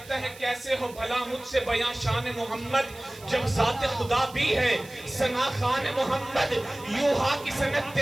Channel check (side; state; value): right; noise; hiss, 20 dB below the sound